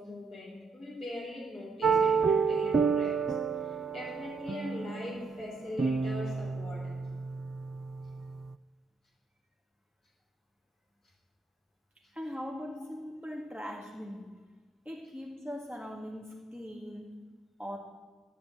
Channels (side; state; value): left; quieter; 4.2 dB